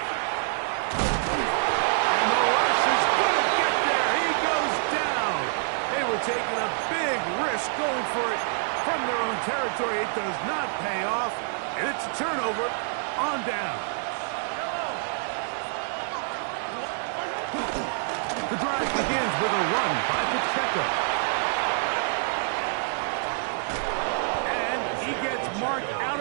And the rush is going to get there. He goes down. They were taking a big risk going for it from their own territory. It does not pay off. And it's a turnover on down. The drive begins with a run by Pacheco. And he gets marked out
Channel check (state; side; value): silent; left; 60 dB below the other